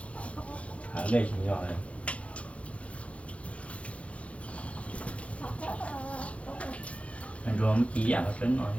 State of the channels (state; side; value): late; right; 0.063 ms